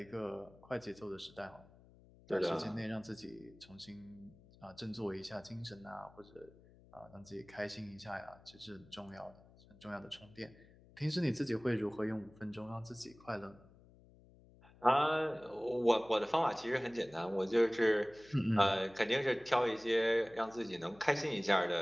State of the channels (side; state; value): left; noise; hum, 25 dB below the sound